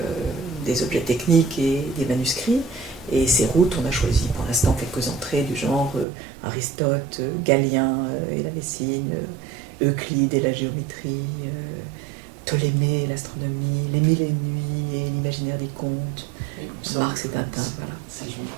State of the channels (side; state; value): left; drops out; at 6.1 s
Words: des objets techniques et des manuscrits. Et ces routes, on a choisi pour l'instant quelques entrées du genre Aristote, Galien et la médecine, Euclide et la géométrie, Ptolémée et l'astronomie, Les Mille et Une Nuits et l'imaginaire des contes, Marx et Tintin. Voilà.